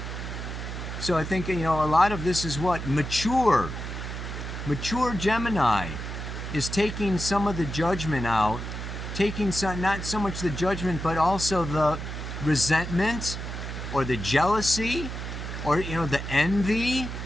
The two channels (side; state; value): right; noise; hum, 7 dB below the sound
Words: So I think, a lot of this is what? Mature Gemini is taking some of the judgment out, taking some, not so much the judgment, but also the resentment or the jealousy or, the envy,